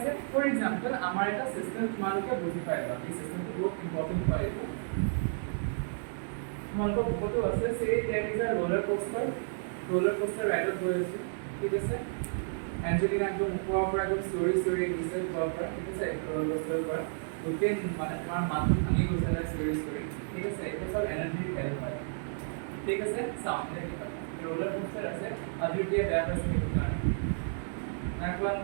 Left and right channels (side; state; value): left; silent; digital silence